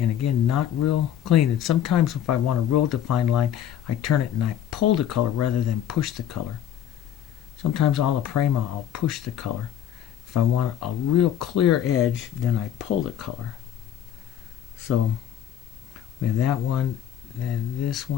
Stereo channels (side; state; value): right; quieter; 10.4 dB